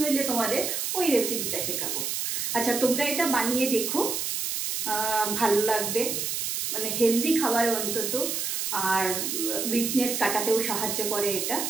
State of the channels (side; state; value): right; noise; hiss, 1 dB below the sound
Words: হইলে তোমাদের ওই রেসিপিটা শেখাবো। আচ্ছা, তোমরা এটা বানিয়ে দেখো, ভালো লাগবে, মানে হেলদি খাবার অন্তত, আর উইকনেস কাটাতেও সাহায্য করে এটা।